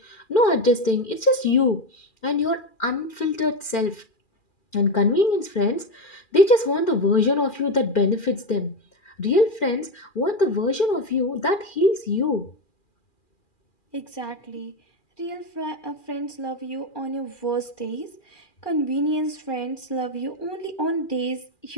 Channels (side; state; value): right; late; 2.4 ms